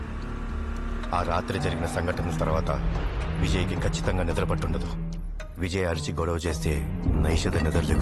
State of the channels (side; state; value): both; identical; correlation 1.00